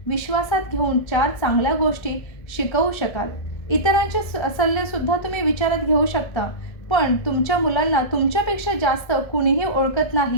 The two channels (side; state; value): right; late; 1.7 ms